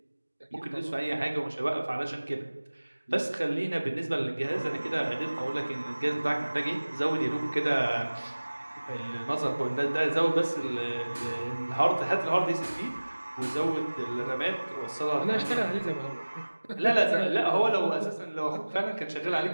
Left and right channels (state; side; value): inverted; both; correlation -1.00